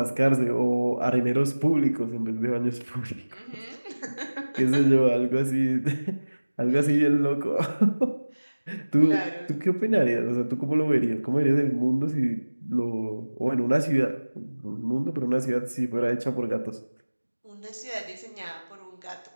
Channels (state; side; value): inverted; both; correlation -1.00